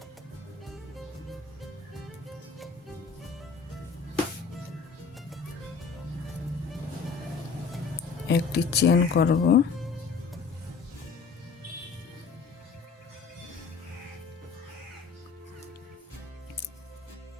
একটি চেন করব।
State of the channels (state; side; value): quieter; right; 5.2 dB